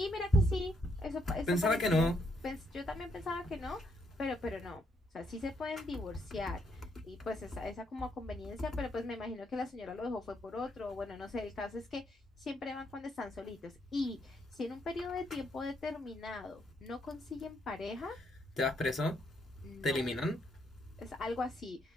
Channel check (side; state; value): both; normal; correlation 0.74